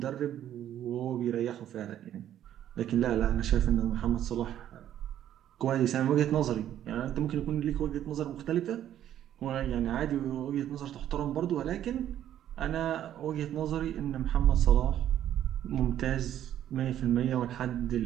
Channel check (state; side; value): quieter; left; 11.3 dB